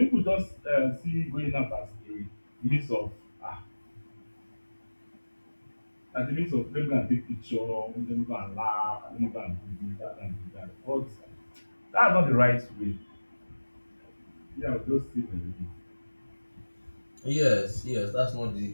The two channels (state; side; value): inverted; both; correlation -1.00